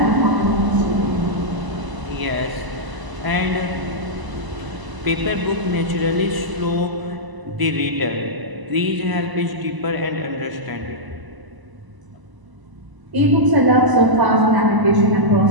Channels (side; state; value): left; late; 1.0 ms